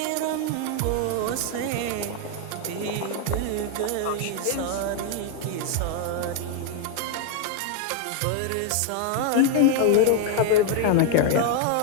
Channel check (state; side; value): different; both; correlation 0.00